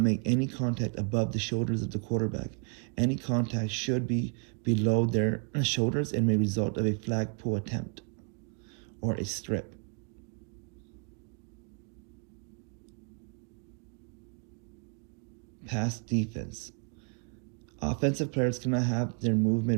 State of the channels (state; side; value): quieter; left; 37.0 dB